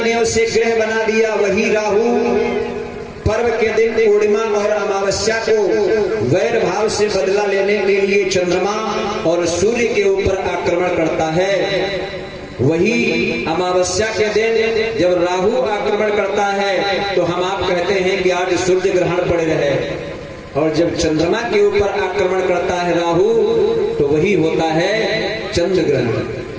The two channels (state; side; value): identical; both; correlation 1.00